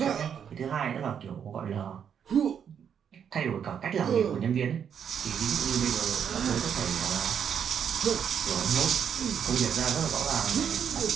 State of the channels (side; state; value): left; quieter; 8.0 dB